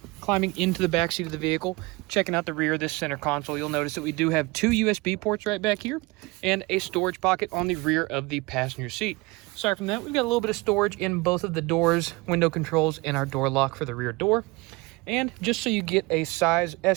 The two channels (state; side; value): quieter; left; 23.9 dB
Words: Climbing into the back seat of the vehicle, checking out the rear of this center console, you'll notice that we do have 2 USB ports right back here and a storage pocket on the rear of the passenger seat. Aside from that, we've got a little bit of storage in both of the doors, window controls, and our door lock for the rear door. And just so you get a size